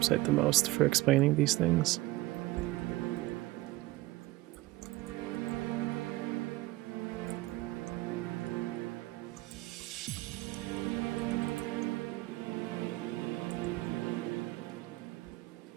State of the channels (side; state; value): left; quieter; 19.2 dB